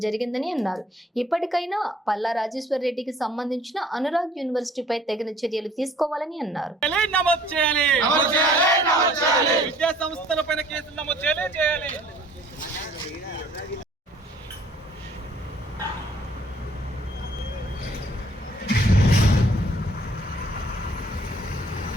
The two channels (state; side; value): normal; both; correlation 0.57